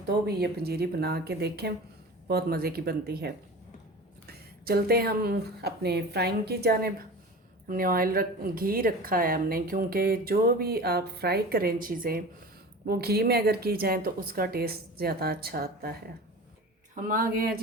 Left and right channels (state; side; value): normal; both; correlation 0.35